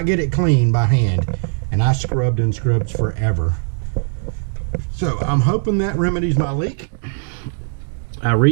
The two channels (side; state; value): left; silent; digital silence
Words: get it clean by hand, and I scrubbed and scrubbed forever. So I'm hoping that remedies my leak. I